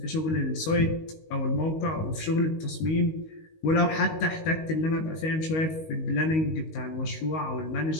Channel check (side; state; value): right; late; 19 ms